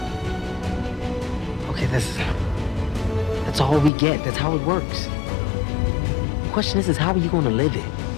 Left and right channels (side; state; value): right; drops out; at 3.9 s